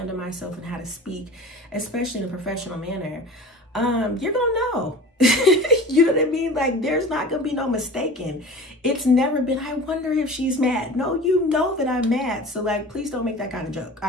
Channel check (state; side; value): normal; both; correlation 0.38